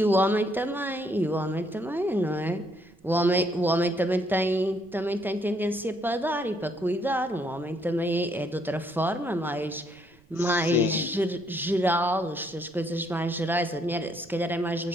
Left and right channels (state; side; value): noise; right; rumble, 29 dB below the sound